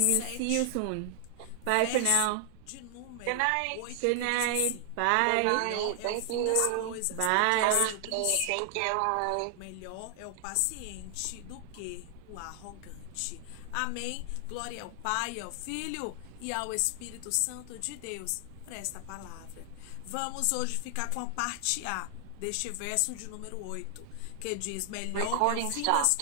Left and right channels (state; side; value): different; both; correlation 0.00